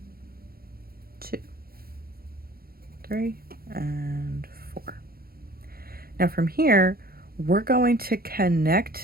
2, 3, and 4. Now from here, we're going to connect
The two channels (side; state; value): left; late; 0.44 ms